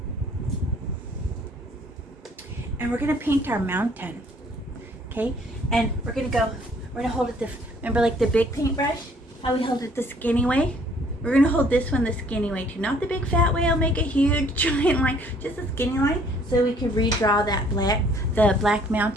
And we're gonna paint our mountain. Okay? And we're gonna hold it remember like the big paintbrush? How we hold it the skinny way? We're gonna hold this one the skinny way too. Not the big fat way, I'll make a huge giant line, just the skinny line, so we can redraw that the black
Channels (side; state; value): both; normal; correlation 0.60